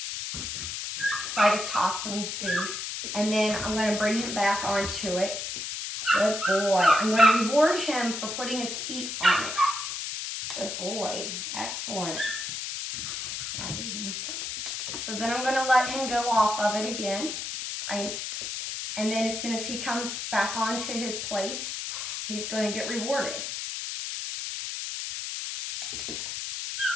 so I just tossed him food, and then I'm going to bring him back onto it. Good boy. I'm going to reward him for putting his feet on it. Good boy. Excellent. All right, you want some? So then I'm going to let him go off of it again. And then as soon as he comes back onto his place, he's going to get rewarded.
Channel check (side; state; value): left; noise; hiss, 5 dB below the sound